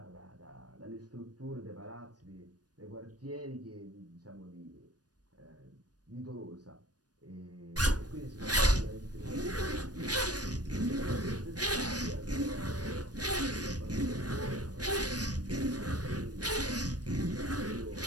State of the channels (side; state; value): left; late; 0.69 ms